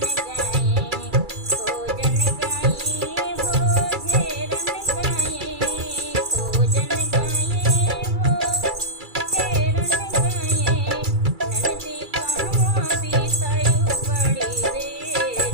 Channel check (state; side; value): late; left; 2.3 ms